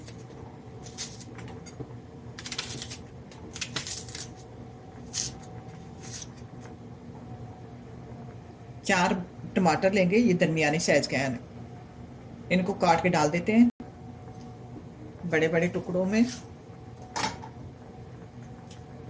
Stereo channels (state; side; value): identical; both; correlation 1.00